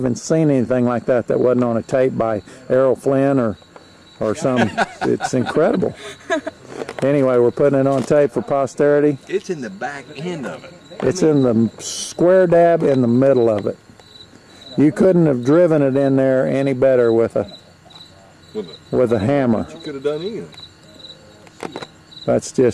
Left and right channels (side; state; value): both; identical; correlation 1.00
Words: seen anything like that wasn't on a tape by Errol Flynn or some. It's incredible. Anyway, we're putting it on tape for posterity. It's in the back end of it. It's in the square dab in the middle of it. You couldn't have driven it in there any better with a hammer. You could have done anything. That's